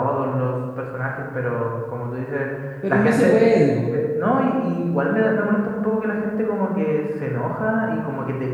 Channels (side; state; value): both; identical; correlation 1.00